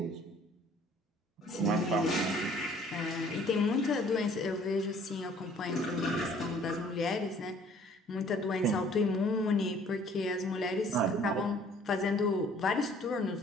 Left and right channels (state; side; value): normal; both; correlation 0.56